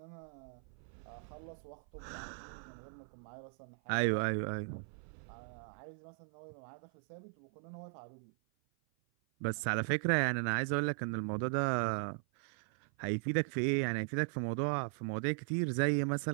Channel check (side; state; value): left; silent; 52 dB below the other